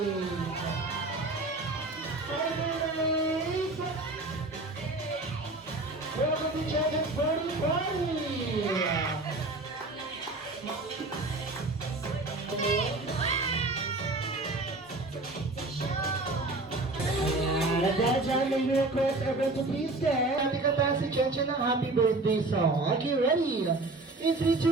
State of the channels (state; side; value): quieter; left; 3.1 dB